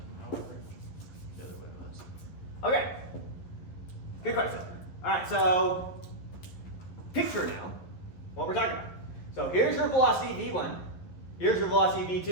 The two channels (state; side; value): late; right; 11 ms